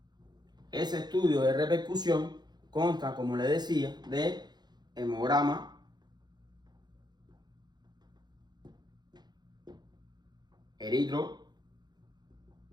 Ese estudio de repercusión consta, como le decía, de hemograma, eritro,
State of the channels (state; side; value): late; left; 0.20 ms